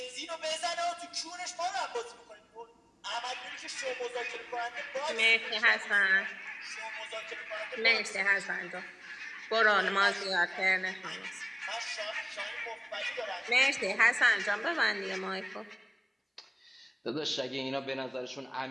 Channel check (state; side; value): identical; both; correlation 1.00